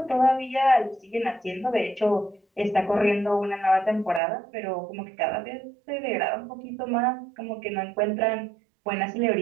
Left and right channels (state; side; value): drops out; left; at 4.2 s